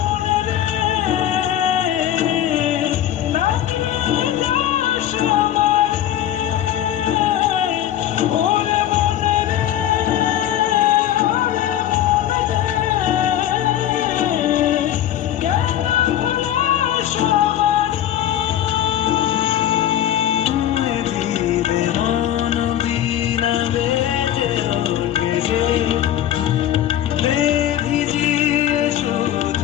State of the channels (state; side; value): quieter; right; 11.5 dB